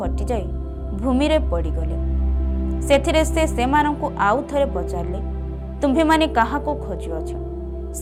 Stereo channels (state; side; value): identical; both; correlation 1.00